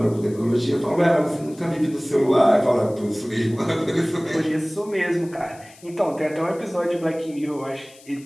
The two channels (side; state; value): left; noise; hiss, 24 dB below the sound